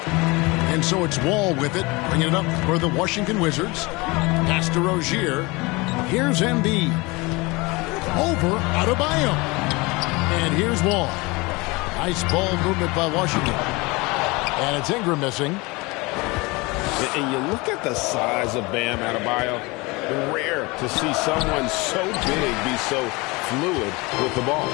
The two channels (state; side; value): quieter; right; 24.8 dB